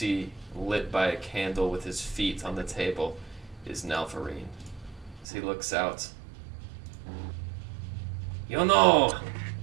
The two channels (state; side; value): drops out; left; at 5.2 s